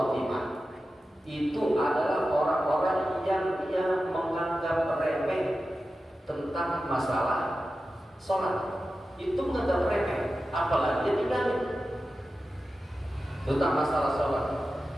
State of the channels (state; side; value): normal; both; correlation 0.93